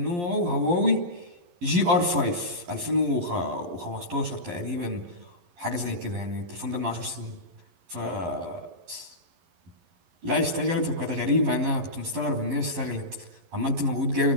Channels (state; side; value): late; left; 11 ms